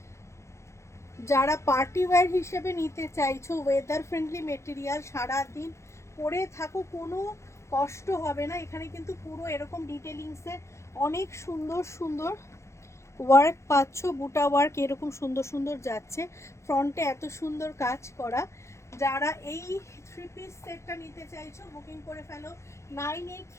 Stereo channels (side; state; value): right; late; 0.14 ms